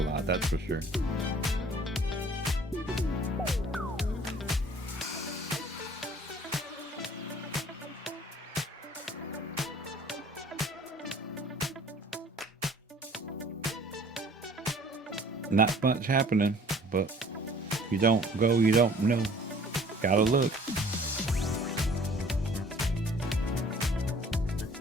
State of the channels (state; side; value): normal; both; correlation 0.53